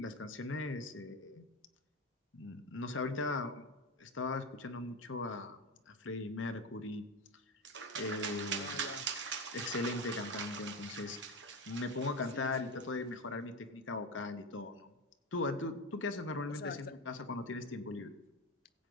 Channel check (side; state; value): both; normal; correlation 0.19